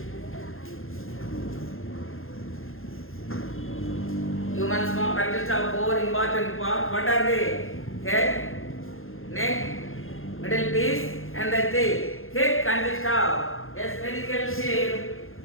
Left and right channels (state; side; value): late; right; 0.60 ms